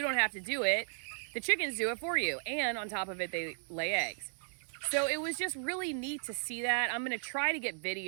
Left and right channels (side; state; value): left; silent; digital silence